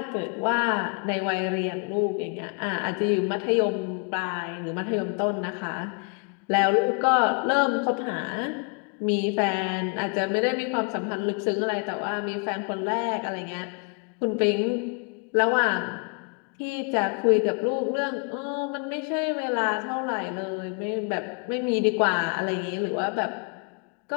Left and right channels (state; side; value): quieter; right; 35.7 dB